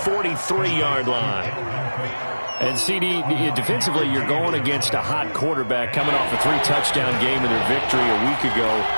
line. And CD, defensively, you're going against a hot quarterback coming off a 3-touchdown game in their victory a week ago.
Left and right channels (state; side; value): inverted; both; correlation -1.00